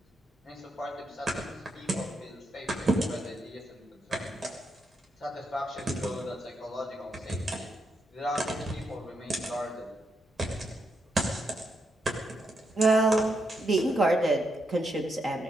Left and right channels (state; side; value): normal; both; correlation 0.81